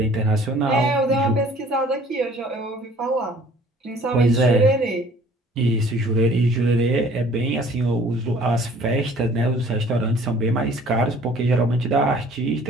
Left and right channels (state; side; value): normal; both; correlation 0.53